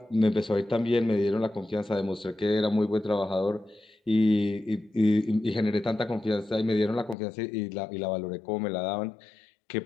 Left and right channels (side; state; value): right; drops out; at 7.2 s